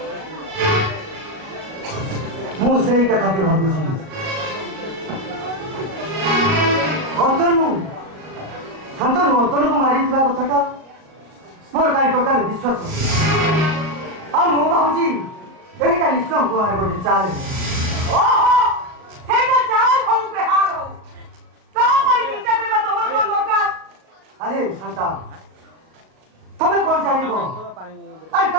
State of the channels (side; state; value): left; late; 37 ms